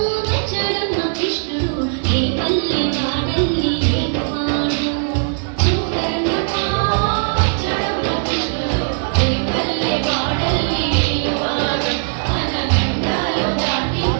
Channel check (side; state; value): left; silent; digital silence